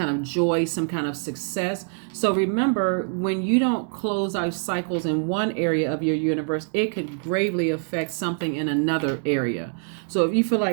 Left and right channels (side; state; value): left; silent; 56 dB below the other